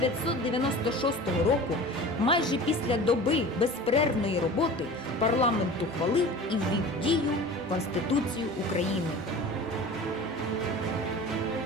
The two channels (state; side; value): normal; both; correlation 0.38